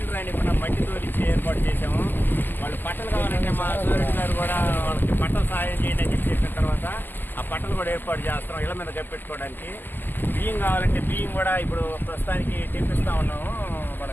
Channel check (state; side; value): late; right; 0.094 ms